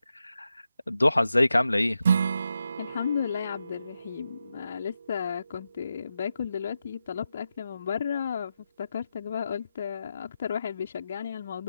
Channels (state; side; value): inverted; both; correlation -0.88